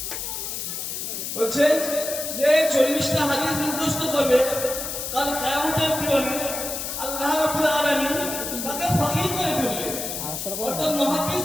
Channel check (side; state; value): left; noise; hiss, 5 dB below the sound